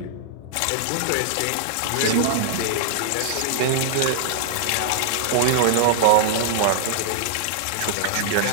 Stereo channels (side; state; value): both; different; correlation -0.01